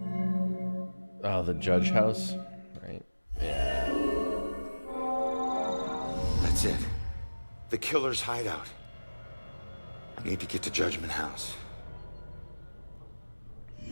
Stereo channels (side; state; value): both; inverted; correlation -1.00